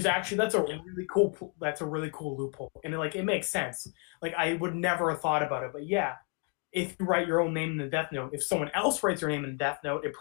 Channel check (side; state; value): right; quieter; 36.5 dB